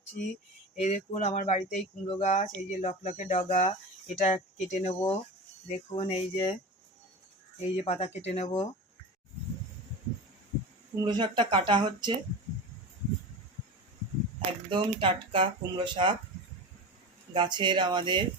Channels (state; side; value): normal; both; correlation 0.28